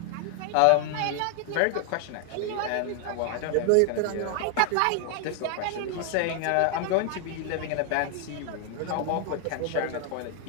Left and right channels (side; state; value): both; different; correlation 0.00